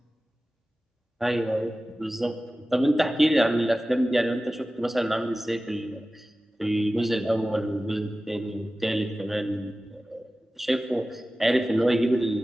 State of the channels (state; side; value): normal; both; correlation 0.96